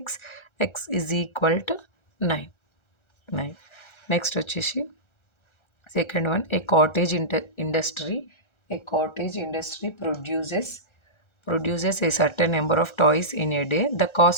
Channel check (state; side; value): late; right; 1.3 ms